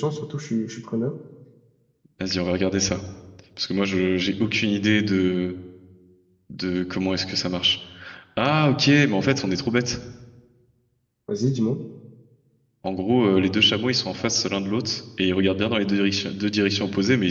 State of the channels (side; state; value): both; identical; correlation 1.00